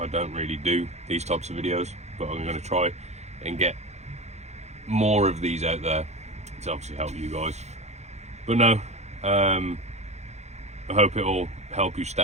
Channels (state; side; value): late; left; 0.32 ms